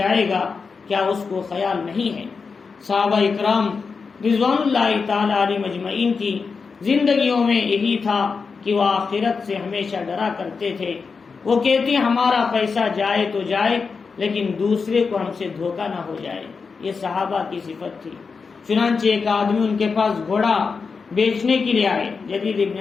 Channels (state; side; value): quieter; right; 5.0 dB